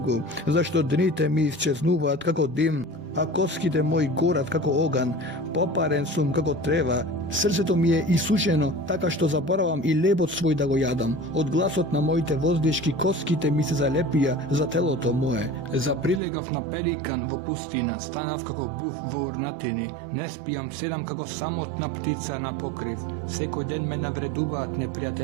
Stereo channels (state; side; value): drops out; left; at 16.2 s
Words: зашто дните ми исчезнуваат како дим, а коските мои горат како оган, попарен сум како трева, срцето ми е исушено, така што заборавам и лебот свој да го јадам. Од гласот на моите воздишки коските ми се залепија за телото мое. Заприлегав на пеликан во пустина, станав како буф во урнатини, не спијам, седам како самотна птица на покрив. Секој ден ме навредуваат